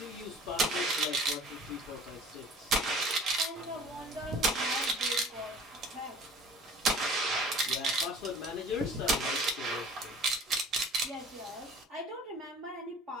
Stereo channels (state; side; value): normal; both; correlation 0.47